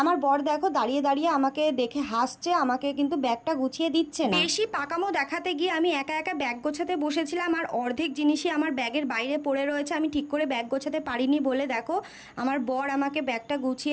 আমার বর দেখো দাঁড়িয়ে দাঁড়িয়ে আমাকে দেখে হাসছে, আমাকে কিন্তু ব্যাগটা গুছিয়ে দিচ্ছে না। বেশি পাকামো দেখাতে গিয়ে আমি একা একা ব্যাগ গোছাতে বসেছিলাম। আর অর্ধেক জিনিসই আমার ব্যাগের বাইরে পড়ে রয়েছে। আমি ঠিক করে ব্যাগ গোছাতে পারিনি বলে দেখো আমার বর আমাকে ব্যাগটা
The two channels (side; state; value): both; identical; correlation 1.00